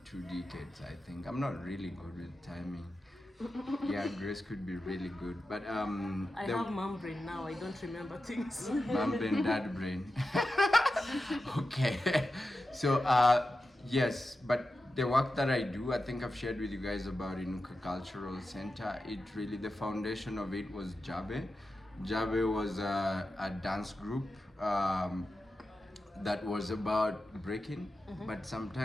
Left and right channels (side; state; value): both; normal; correlation 0.91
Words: 2 decades, I think. I'm not really good with timing. Yeah, Grace could be really good, but I have mom brain now. I don't remember things. mom brain, dad brain. Okay, so yes, but the work that I do, I think I've shared with you guys about Inuka Cultural Center. It really, the foundation of it was Jabe. Jabe was a dance group that was about breaking, but